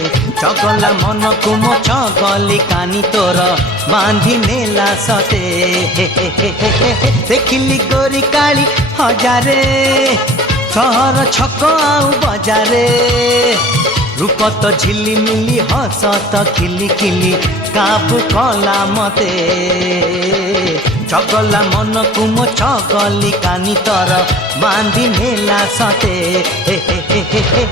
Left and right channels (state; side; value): normal; both; correlation 0.44